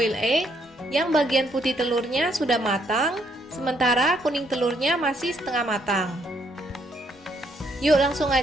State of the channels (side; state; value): both; normal; correlation 0.71